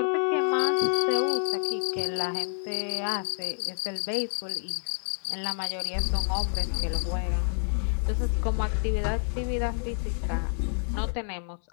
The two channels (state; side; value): silent; right; 59 dB below the other